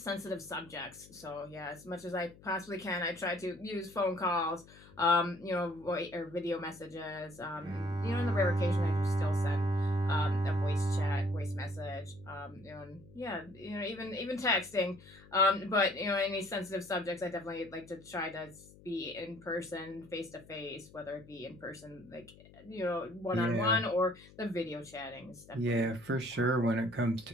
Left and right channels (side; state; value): left; noise; hum, 22 dB below the sound